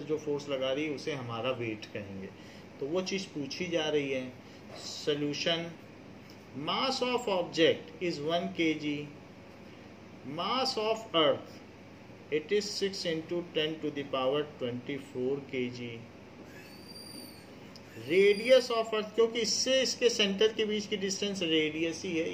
जो फोर्स लगा रही है उसे हमारा वेट कहेंगे, तो वो चीज पूछी जा रही है। Solution, mass of object is 1 kg, mass of earth it is 6 × 10⁻24 kg, radius of अर्थ, क्योंकि इससे इसके सेंटर के बीच की डिस्टेंस रेडियस ही है,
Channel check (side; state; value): both; identical; correlation 1.00